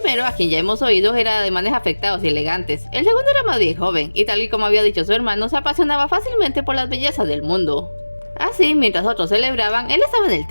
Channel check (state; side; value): inverted; both; correlation -1.00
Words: a quien ya hemos oído, era de ademanes afectados y elegantes. El segundo era más bien joven, y tal y como había dicho su hermano, se apasionaba fácilmente por las bellezas del mundo. Así, mientras otros celebraban, él estaba en el